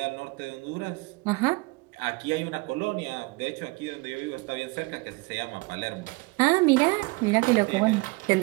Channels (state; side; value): quieter; left; 25.8 dB